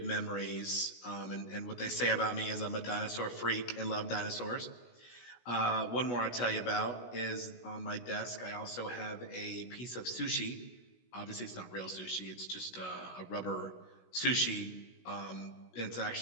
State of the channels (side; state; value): right; late; 16 ms